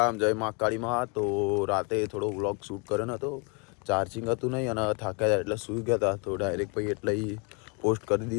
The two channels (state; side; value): quieter; right; 31.6 dB